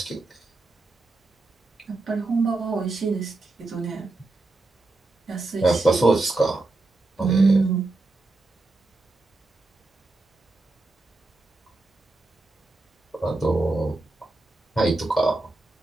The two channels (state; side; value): quieter; left; 3.1 dB